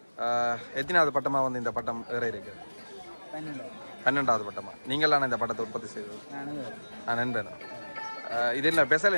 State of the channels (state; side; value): inverted; both; correlation -1.00